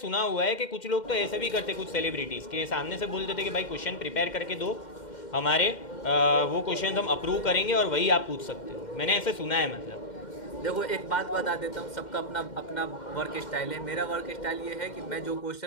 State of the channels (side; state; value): right; late; 2.1 ms